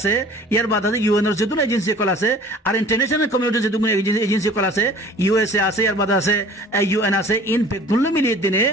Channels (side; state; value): both; normal; correlation 0.47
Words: यार बाद आसे यूएन और जदुन एजेंसी को लासे और इंटरनेशनल कम्युनिटी जदुन एजेंसी को लासे यूएसए आसे यार बाद आसे यूएन आसे इन पे गुल्लू मिलिए दिने